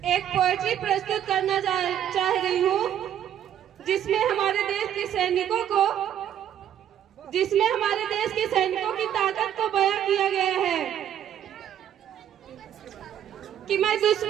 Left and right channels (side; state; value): left; quieter; 10.3 dB